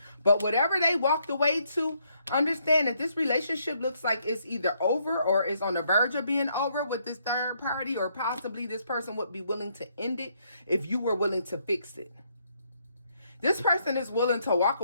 But whatever they walked away to, understand that this relationship looks like it's either over or is on the verge of being over with this third party, or possibly this person would be willing to end it if you were willing to fix it. This person is willing to walk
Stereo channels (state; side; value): inverted; both; correlation -0.72